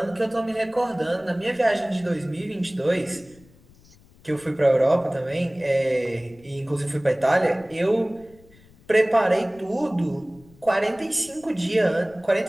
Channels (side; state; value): left; noise; rumble, 27 dB below the sound